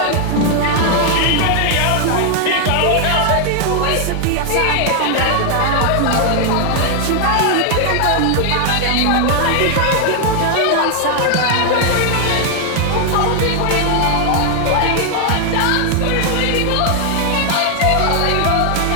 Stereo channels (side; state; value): both; different; correlation 0.00